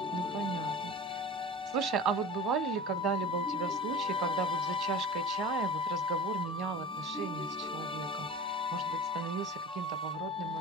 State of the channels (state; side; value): normal; both; correlation 0.35